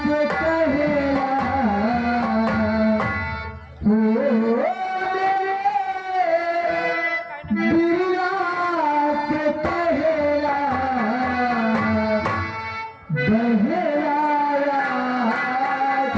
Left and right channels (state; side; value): identical; both; correlation 1.00